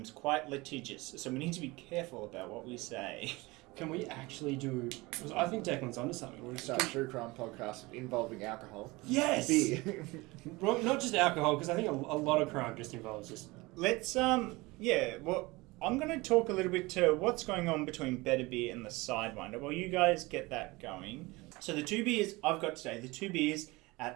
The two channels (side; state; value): left; quieter; 22.7 dB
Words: quite litigious, so we need to be careful about what we say. Can we actually do... I think Declan's onto something. We're going to start a true crime podcast involving alcohol. Yes! Beer. Well, not just alcohol, because I think a lot of crime just involves just... Let's, I'm going to talk a little bit to what's going on between Better Beer and the Sidewinder. Well, you guys get that going. So the two beers I've got today, the two beers